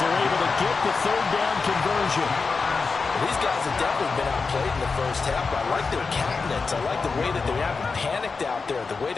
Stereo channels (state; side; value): quieter; right; 4.6 dB